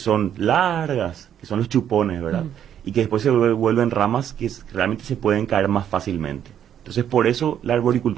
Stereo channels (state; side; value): quieter; left; 9.7 dB